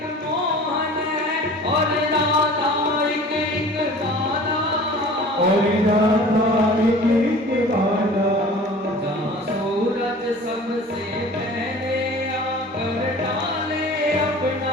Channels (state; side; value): normal; both; correlation 0.43